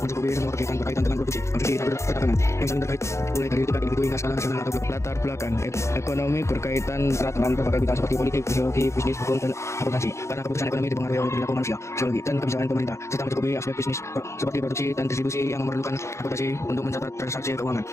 semua kegiatan berkaitan dengan produksi, konsumsi, dan perdagangan yang saling terkait, mulai dari tingkat individu hingga skala nasional atau global. Latar belakang ekonomi berkaitan erat dengan berbagai bidang seperti politik, sosiologi, bisnis, hukum, dan akuntansi. Karena keputusan ekonomi dipengaruhi oleh perilaku manusia, sosiologi, dan kebijakan pemerintah, serta mencakupi aspek bisnis seperti produksi dan distribusi yang memerlukan akuntansi untuk mencatat transaksi keuangan.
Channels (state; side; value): late; right; 0.14 ms